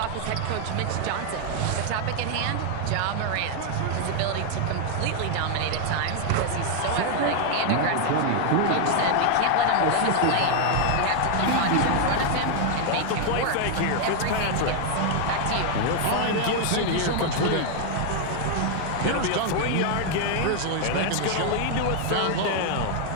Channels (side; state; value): both; different; correlation 0.00